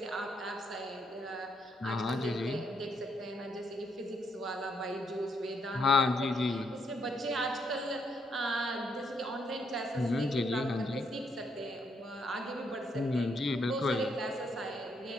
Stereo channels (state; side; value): normal; both; correlation 0.75